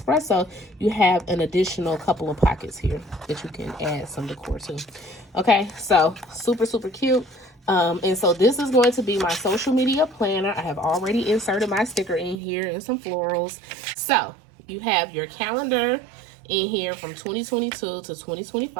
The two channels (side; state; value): left; drops out; at 12.4 s